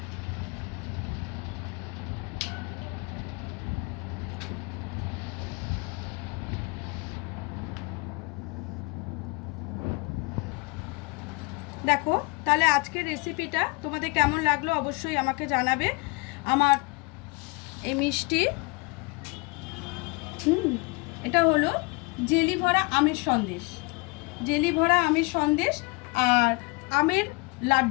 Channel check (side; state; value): right; quieter; 28.2 dB